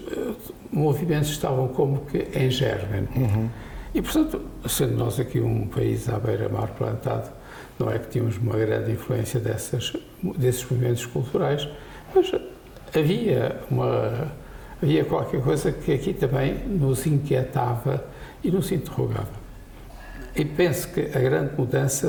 movimentos estavam como que em germe. E, portanto, sendo nós aqui um país à beira-mar plantado, não é que tínhamos uma grande influência desses movimentos culturais, mas havia qualquer coisa que aqui também nos inquietava e nos interrogava. E penso que a grande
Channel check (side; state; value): both; identical; correlation 1.00